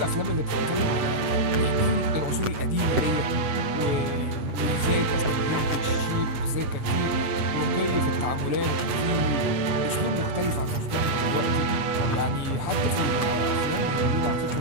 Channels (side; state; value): left; late; 7.7 ms